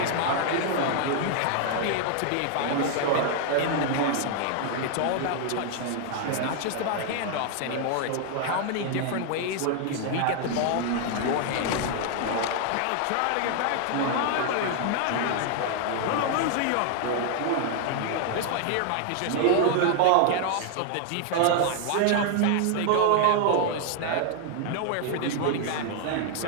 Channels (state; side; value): different; both; correlation 0.00